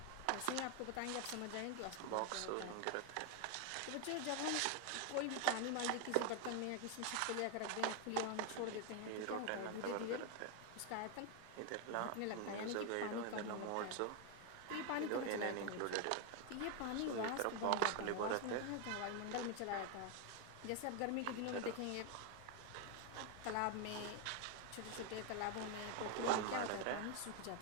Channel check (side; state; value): both; different; correlation 0.01